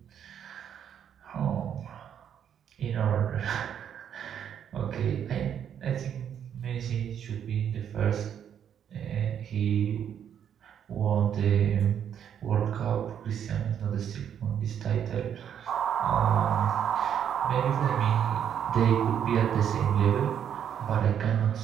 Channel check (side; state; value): left; quieter; 8.9 dB